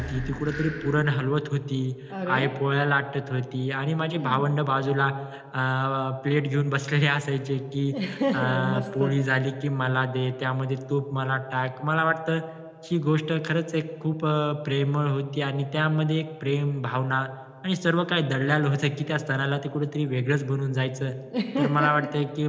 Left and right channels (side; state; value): both; identical; correlation 1.00